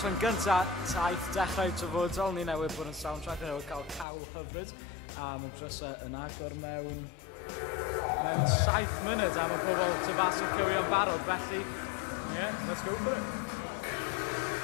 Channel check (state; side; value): drops out; right; at 4.0 s